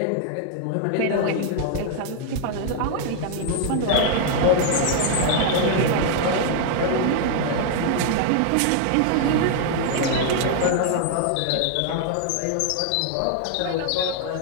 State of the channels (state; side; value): different; both; correlation 0.00